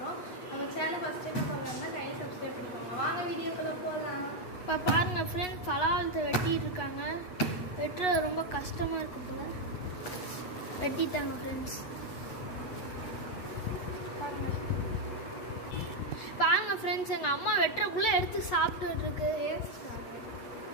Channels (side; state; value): right; late; 8.1 ms